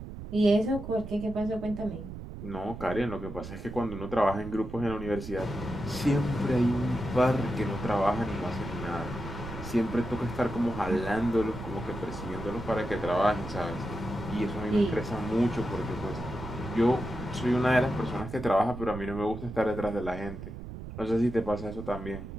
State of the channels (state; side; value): noise; right; rumble, 10 dB below the sound